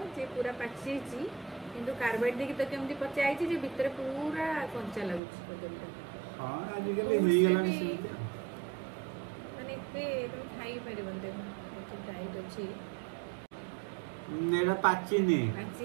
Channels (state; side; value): drops out; left; at 5.2 s